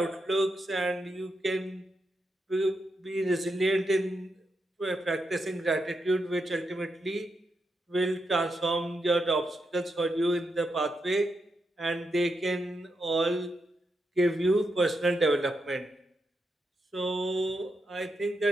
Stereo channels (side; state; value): both; normal; correlation 0.84